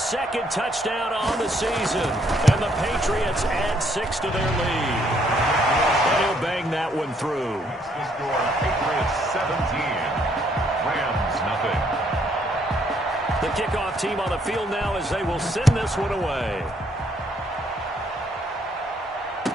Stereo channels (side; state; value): both; normal; correlation 0.68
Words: touchdown on the season. And the Patriots add 6 to their lead. And he'll bang that one through. The score, Patriots 17, Rams nothing. The kickoff team on the field now as they will send this one away.